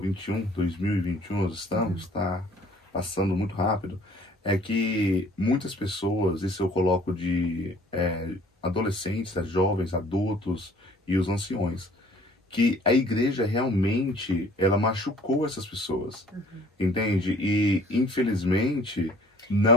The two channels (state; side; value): normal; both; correlation 0.55